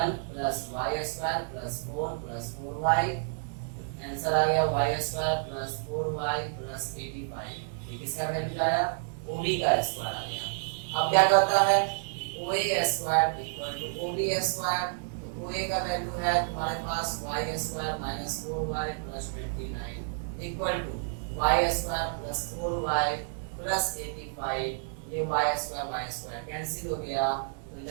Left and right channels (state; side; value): silent; left; digital silence